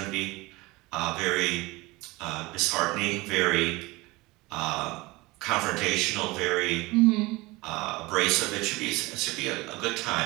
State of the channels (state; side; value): quieter; left; 22.3 dB